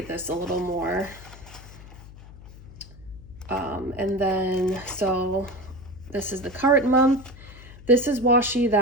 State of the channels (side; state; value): left; noise; hum, 17 dB below the sound